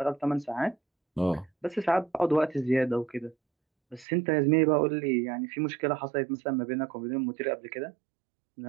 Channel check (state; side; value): drops out; left; at 4.0 s